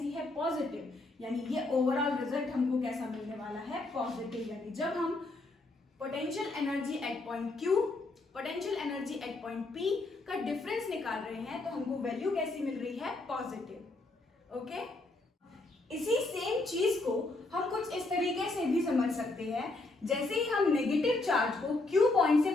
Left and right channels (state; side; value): quieter; right; 3.1 dB